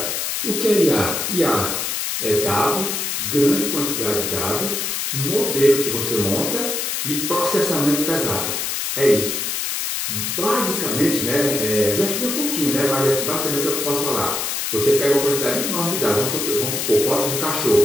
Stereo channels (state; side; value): noise; left; hiss, 2 dB below the sound